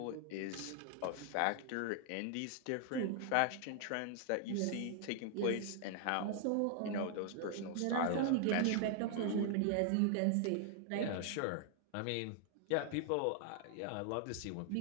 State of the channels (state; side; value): different; both; correlation 0.00